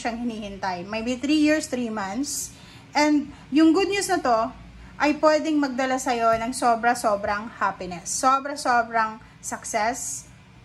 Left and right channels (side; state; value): both; identical; correlation 1.00